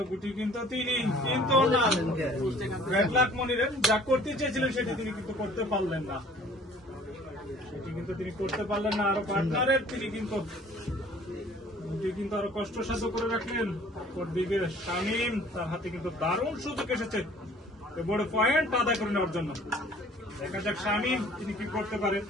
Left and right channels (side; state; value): both; normal; correlation 0.52